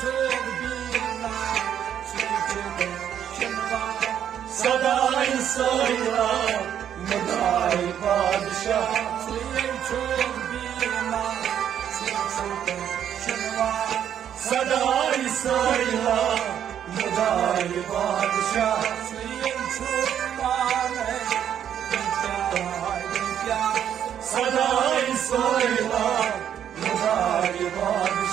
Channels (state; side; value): quieter; left; 9.6 dB